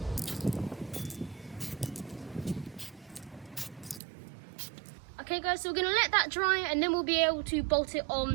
Okay guys, so we're going to let that dry and then we'll be able to bolt it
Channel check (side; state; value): left; drops out; at 4.0 s